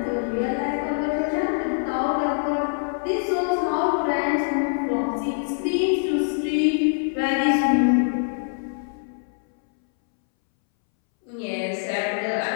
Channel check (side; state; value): right; silent; 63 dB below the other